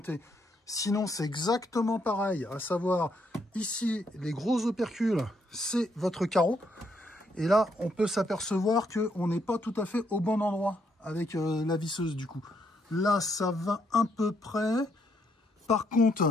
Sinon, c'est exactement pareil, à savoir, ici, les gros opercules, c'est votre carreau. Et là, on peut s'apercevoir qu'on n'est pas tout à fait au bon endroit avec la visseuse, du coup. Là, ça va à peu près. Par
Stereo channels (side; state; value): both; normal; correlation 0.74